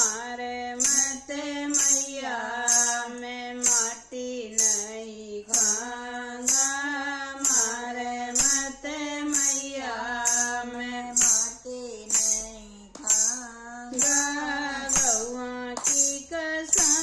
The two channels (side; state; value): both; identical; correlation 1.00